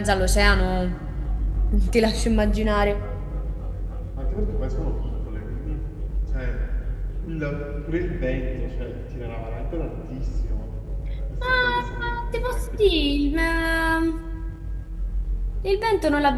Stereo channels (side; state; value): both; identical; correlation 1.00